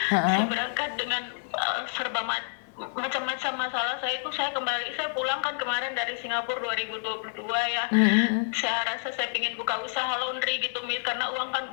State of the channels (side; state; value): right; silent; 59 dB below the other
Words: Saya berangkat dengan serba macam-macam masalah saya itu. Saya pulang kan kemarin dari Singapura 2022 ya. Saya rasa saya ingin buka usaha laundry gitu, Miss, karena uang